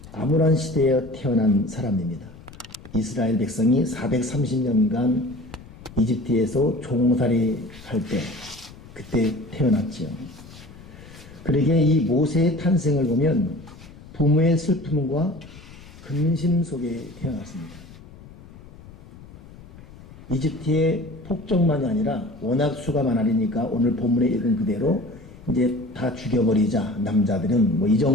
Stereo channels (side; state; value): left; noise; rumble, 19 dB below the sound